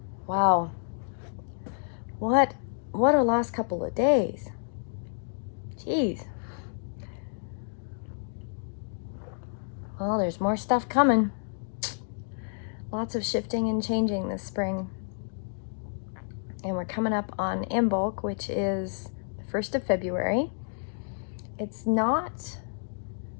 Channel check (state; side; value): silent; right; digital silence